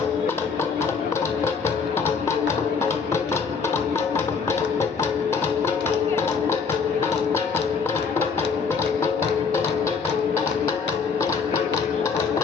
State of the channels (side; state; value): right; quieter; 5.6 dB